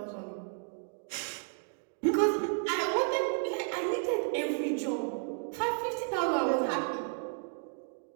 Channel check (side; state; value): left; silent; 56 dB below the other